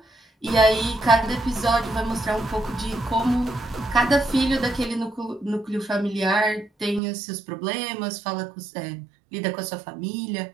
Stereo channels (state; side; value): drops out; left; at 7.0 s